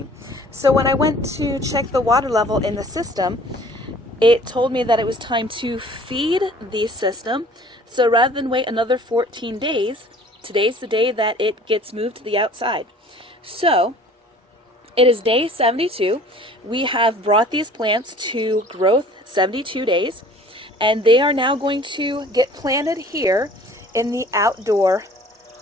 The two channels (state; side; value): normal; both; correlation 0.50